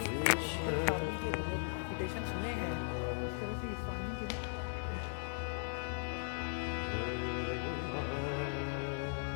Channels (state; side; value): silent; right; 52 dB below the other